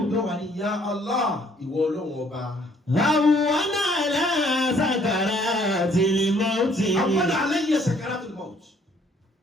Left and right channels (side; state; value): both; normal; correlation 0.62